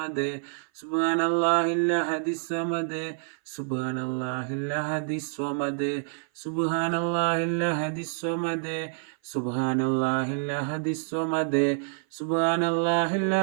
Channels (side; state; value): left; silent; 56 dB below the other